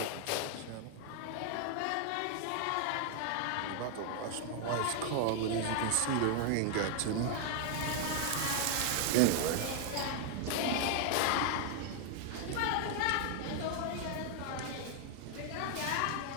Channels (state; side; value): different; both; correlation 0.00